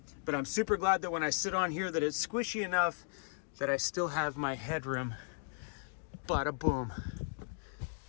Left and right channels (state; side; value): silent; right; digital silence